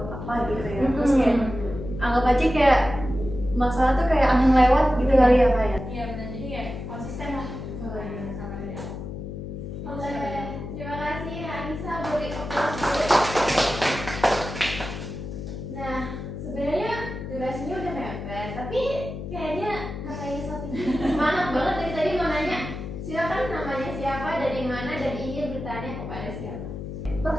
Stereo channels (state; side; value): noise; left; hum, 8 dB below the sound